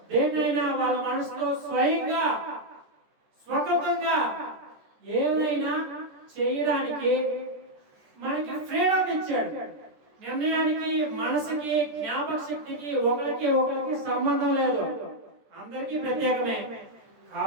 దేన్నైనా వాళ్ళ మనసుతో స్వయంగా స్వకృతంగా ఏదైనా చేయడానికి మనకి ఫ్రీడమ్ ఇచ్చాడు. నిర్ణయానికి, మనసుకి, జ్ఞాపక శక్తికి ఒకరికి సంబంధం లేదు, అందరికీ ప్రత్యేకమే.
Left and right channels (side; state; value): left; late; 14 ms